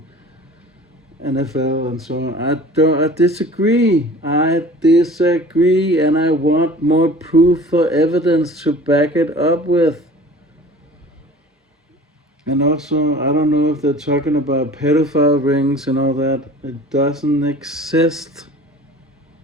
NFL and so on. I disagree. I disagree, and I want more proof or evidence to back it up with. And also, I don't know if they're talking about pedophile rings and all that. It doesn't exist.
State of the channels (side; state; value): both; normal; correlation 0.44